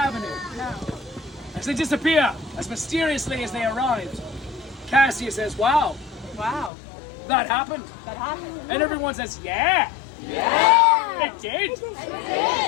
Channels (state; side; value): drops out; right; at 6.7 s